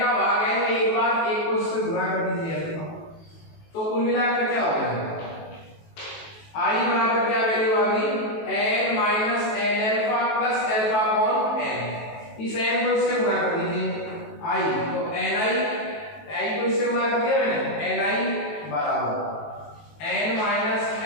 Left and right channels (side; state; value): right; late; 18 ms